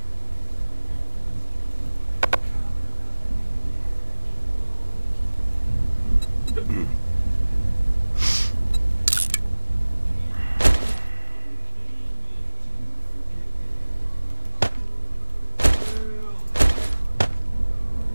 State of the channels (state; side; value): inverted; both; correlation -1.00